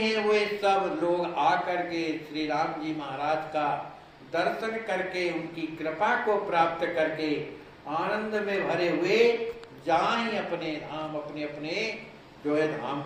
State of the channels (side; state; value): both; identical; correlation 1.00